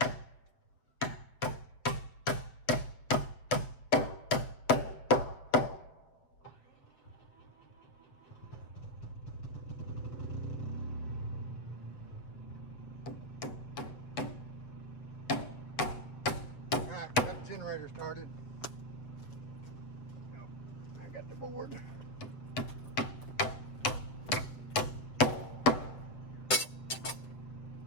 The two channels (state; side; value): late; right; 7.5 ms